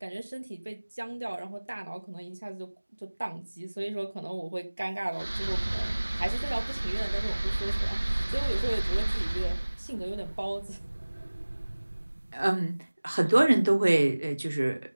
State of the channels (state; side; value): inverted; both; correlation -1.00